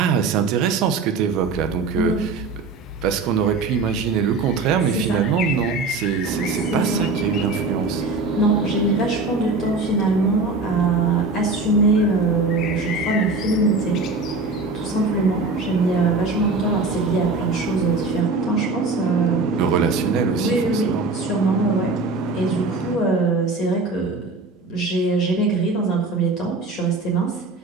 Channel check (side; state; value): left; quieter; 3.7 dB